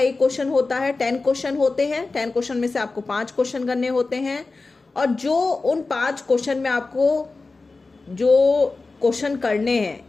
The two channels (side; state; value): right; quieter; 3.7 dB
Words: क्वेश्चन होता है, 10 क्वेश्चन होते हैं। 10 क्वेश्चन में से आपको 5 क्वेश्चन करने होते हैं, और जो उन 5 क्वेश्चन में आपको जो क्वेश्चन करने हैं,